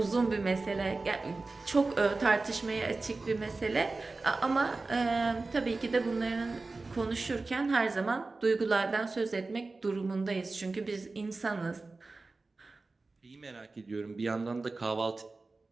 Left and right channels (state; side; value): quieter; left; 3.6 dB